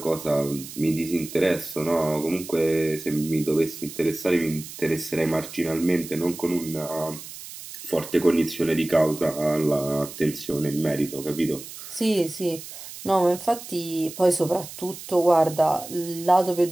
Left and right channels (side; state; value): right; noise; hiss, 13 dB below the sound